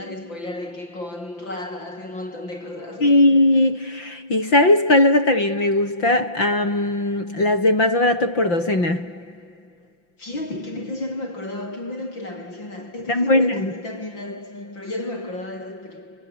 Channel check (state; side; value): late; right; 5.8 ms